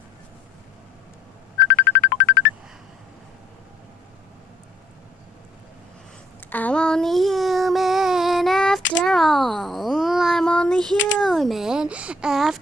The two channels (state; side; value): normal; both; correlation 0.64